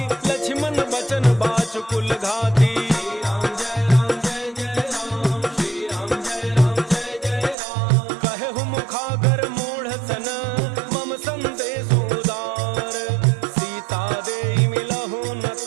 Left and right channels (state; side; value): drops out; left; at 7.6 s